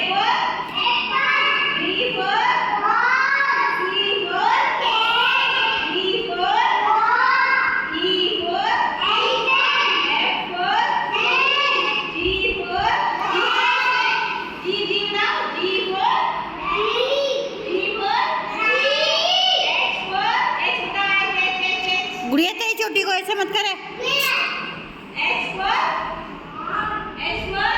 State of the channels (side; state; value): both; identical; correlation 1.00